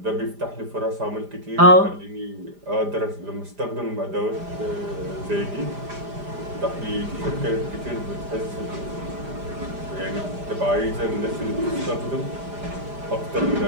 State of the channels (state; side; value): late; left; 5.0 ms